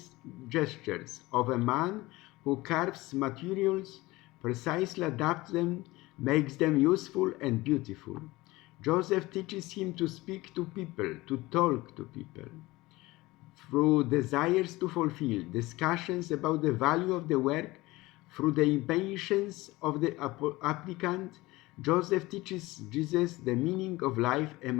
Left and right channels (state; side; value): quieter; right; 20.1 dB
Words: gestures of a man who carves materials, precisely adapts them, makes them useful and beautiful. Joseph teaches him to speak to people, to talk to people. Through desires to fulfill, discussions about the value of the work, through the impatience of the applicant, Joseph teaches Jesus the meaning of life